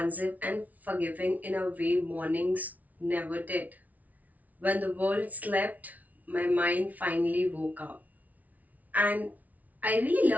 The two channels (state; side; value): late; left; 0.074 ms